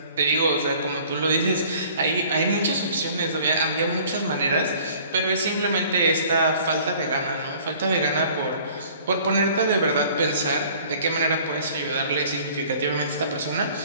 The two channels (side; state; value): both; inverted; correlation -0.52